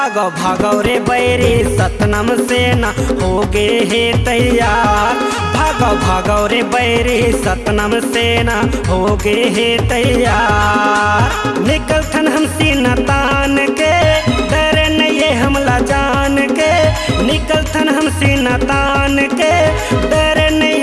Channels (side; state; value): both; identical; correlation 1.00